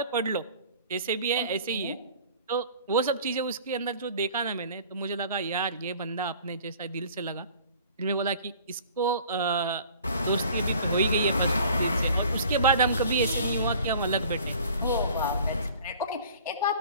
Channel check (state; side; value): inverted; both; correlation -0.48